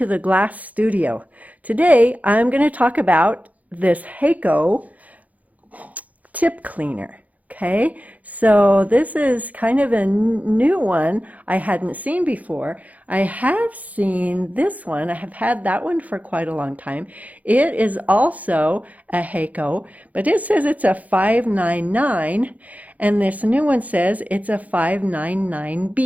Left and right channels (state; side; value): late; left; 0.075 ms